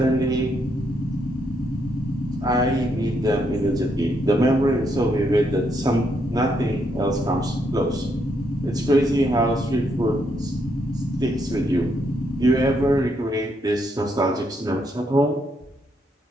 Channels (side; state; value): both; normal; correlation 0.76